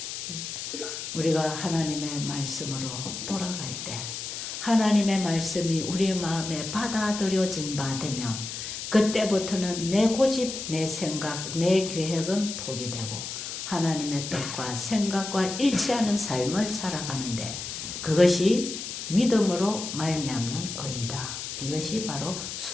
우리가 하나님의 말씀으로 돌아갈 때 하나님의 말씀이 우리의 마음에 받아들여진 바 되면 그때부터는 내 고집, 내 생각, 내 계획은 포기되고 하나님의 뜻과 생각과 일치하는 삶을 살아가는데 그것이 믿음으로 말미암는 의이다. 이것이 바로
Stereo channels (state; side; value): noise; left; hiss, 7 dB below the sound